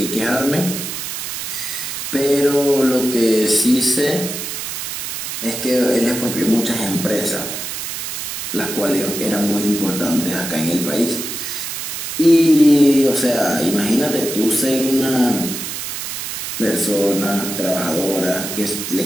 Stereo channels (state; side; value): noise; right; hiss, 5 dB below the sound